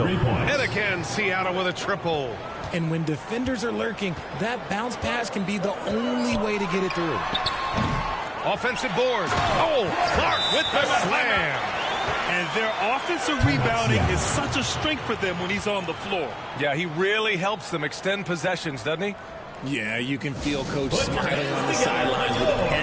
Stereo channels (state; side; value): identical; both; correlation 1.00